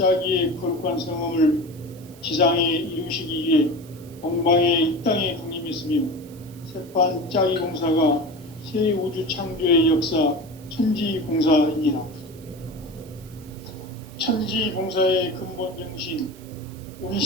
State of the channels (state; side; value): noise; right; hiss, 24 dB below the sound